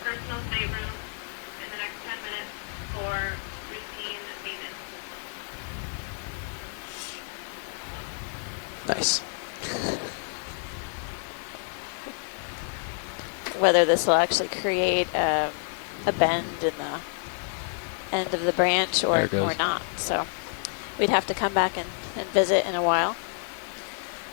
Nice. Whether this will actually create a bend in the end of the branch or not. So we'd have to come back and visit in a while.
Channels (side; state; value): right; silent; 58 dB below the other